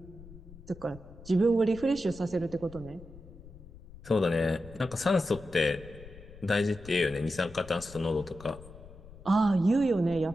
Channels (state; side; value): noise; left; rumble, 18 dB below the sound